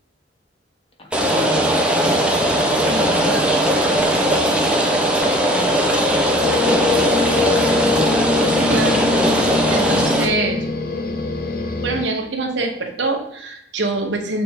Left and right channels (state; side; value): normal; both; correlation 0.46